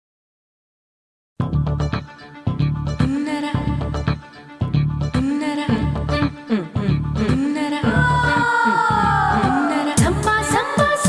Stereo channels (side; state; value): both; identical; correlation 1.00